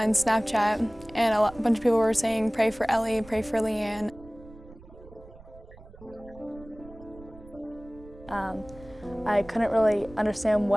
Snapchat, and a bunch of people were saying, "Pray for Ellie, pray for Leanne." And no one really knew, and I didn't really know what happened, and no one really knew what to say. I couldn't really understand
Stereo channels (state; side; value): noise; right; rumble, 20 dB below the sound